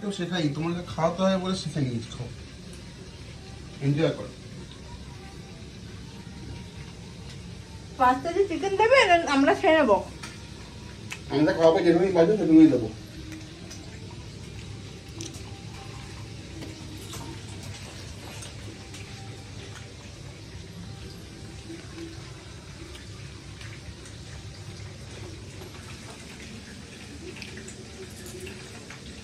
শেখাই, তোমাকে খাওয়াতে হয় বলে শিখে নিয়েছি। খাও, এনজয় করো। পাঁচটা যে চিকেন দেবে আমরা খেয়ে নেবো। আমরা খাওয়াবো, যেভাবেই বাজো সেভাবেই দেবো।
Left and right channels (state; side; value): identical; both; correlation 1.00